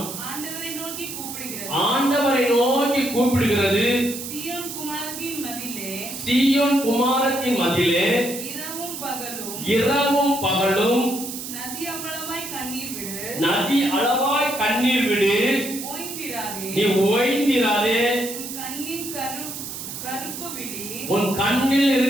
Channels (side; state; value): right; noise; hiss, 8 dB below the sound